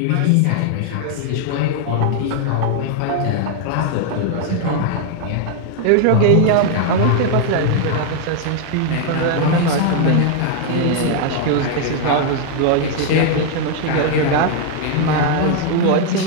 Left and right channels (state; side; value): different; both; correlation 0.00